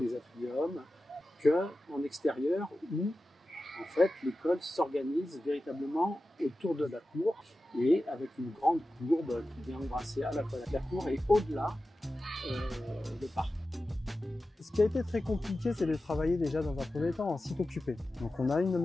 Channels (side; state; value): both; normal; correlation 0.94